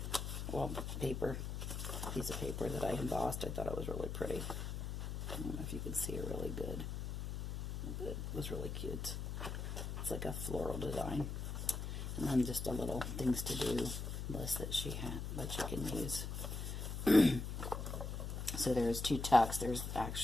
Well, piece of paper that I embossed. I thought it was really pretty. I don't know if you can see it really good. But it was really cute. It's like a floral design. And then just a little things to do list that she had that you can use. So there's two tucks. There's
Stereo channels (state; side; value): noise; left; hum, 4 dB below the sound